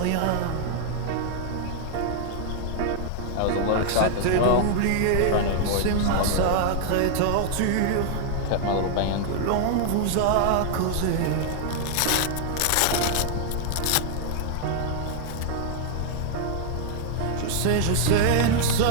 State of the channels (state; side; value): different; both; correlation 0.00